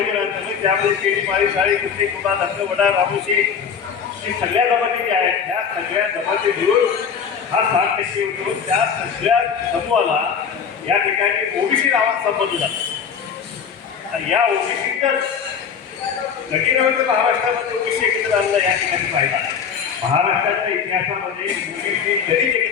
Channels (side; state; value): right; quieter; 7.0 dB